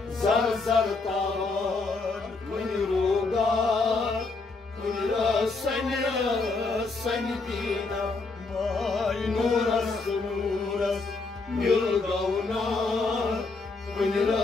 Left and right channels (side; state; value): right; quieter; 3.8 dB